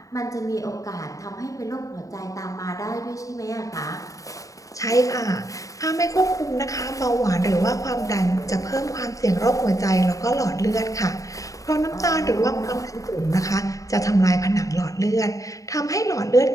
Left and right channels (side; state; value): right; late; 0.16 ms